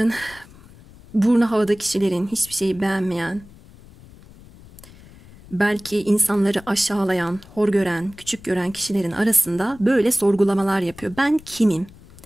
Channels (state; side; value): noise; left; rumble, 22 dB below the sound